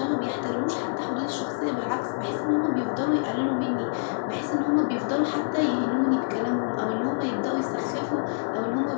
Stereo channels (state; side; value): silent; right; 61 dB below the other